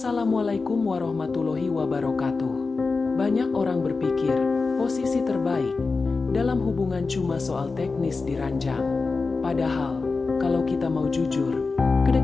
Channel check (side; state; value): right; quieter; 4.1 dB